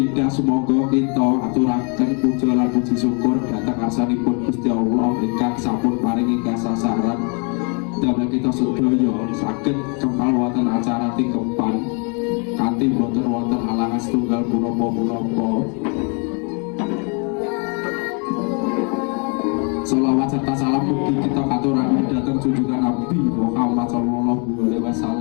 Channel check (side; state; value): right; quieter; 36.3 dB